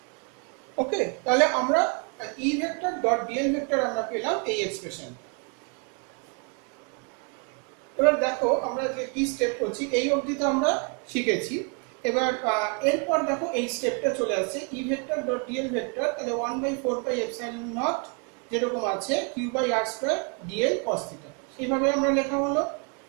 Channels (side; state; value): left; quieter; 36.2 dB